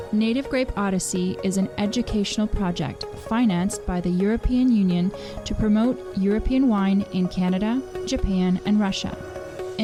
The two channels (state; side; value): identical; both; correlation 1.00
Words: Native Grape Odyssey is an educational project financed by the European Union to promote European wine in Canada, Japan, and Russia.